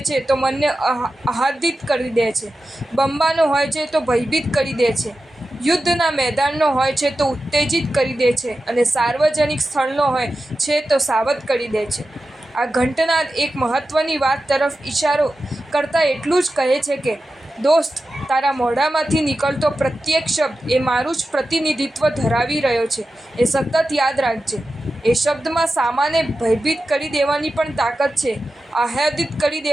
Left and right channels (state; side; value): normal; both; correlation 0.92